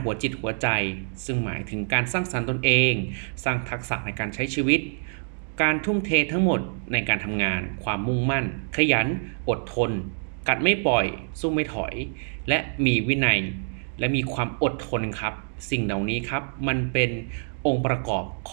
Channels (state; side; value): silent; left; 61 dB below the other